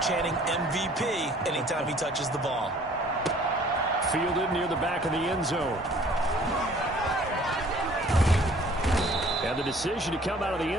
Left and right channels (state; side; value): normal; both; correlation 0.54